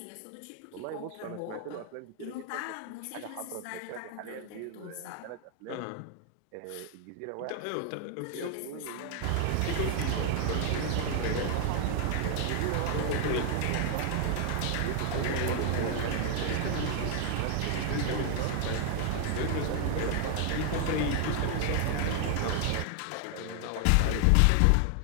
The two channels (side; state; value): both; different; correlation 0.00